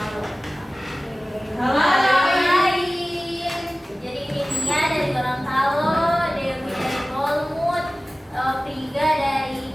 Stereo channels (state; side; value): normal; both; correlation 0.97